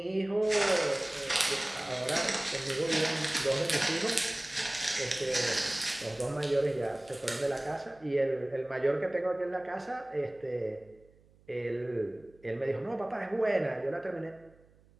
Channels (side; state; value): right; noise; hum, 29 dB below the sound